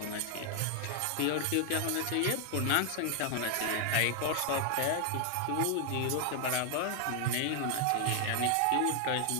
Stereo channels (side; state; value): both; different; correlation 0.00